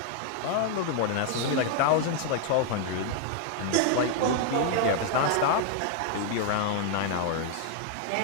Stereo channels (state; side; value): different; both; correlation 0.00